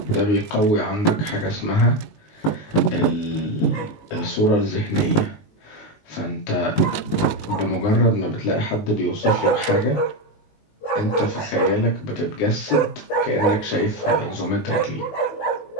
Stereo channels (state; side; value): late; right; 19 ms